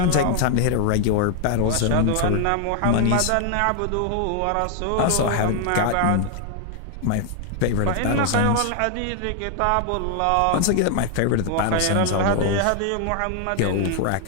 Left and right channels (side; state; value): both; different; correlation 0.00